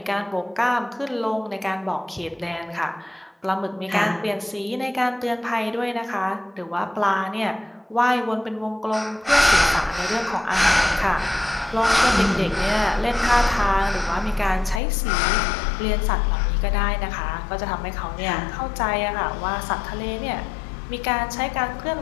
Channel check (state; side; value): drops out; right; at 14.8 s